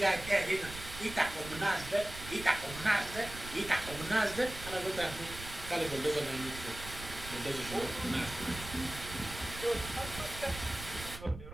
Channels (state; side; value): noise; right; rumble, 12 dB below the sound